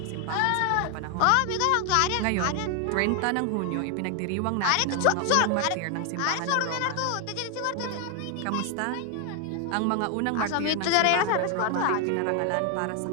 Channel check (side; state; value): both; different; correlation 0.00